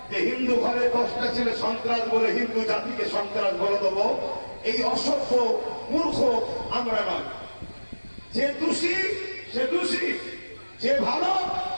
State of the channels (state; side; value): inverted; both; correlation -1.00